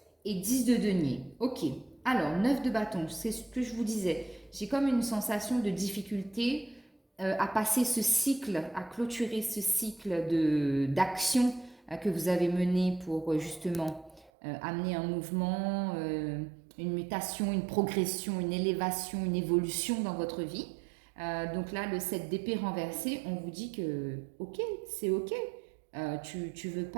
et 10 de denier. Ok, alors 9 de bâton, c'est ce que je vous disais. J'ai comme une sensation de difficulté à passer ce cycle, à clôturer ce cycle d'action que vous avez mené pour justement amener un mouvement, une mutation, une progression, une élévation, une évolution dans votre vie. Donc là, le 7 d'épée renversé, on vous dit que ok, c'est ok. Tu veux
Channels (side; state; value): left; drops out; at 14.3 s